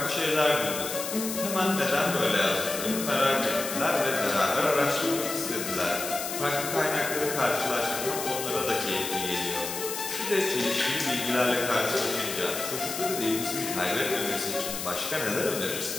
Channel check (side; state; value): left; noise; hiss, 5 dB below the sound